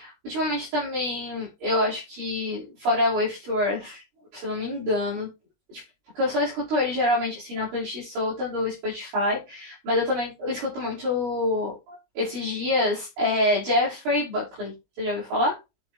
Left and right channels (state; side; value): late; left; 19 ms